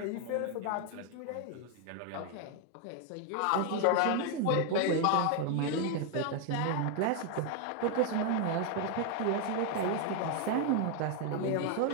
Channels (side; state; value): both; different; correlation 0.01